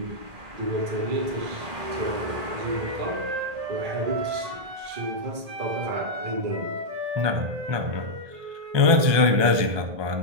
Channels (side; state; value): left; late; 1.8 ms